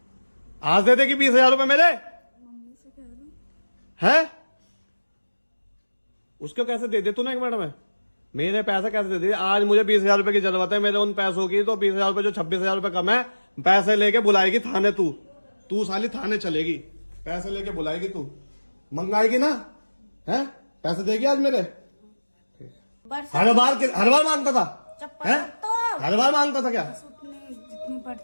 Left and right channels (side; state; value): both; inverted; correlation -1.00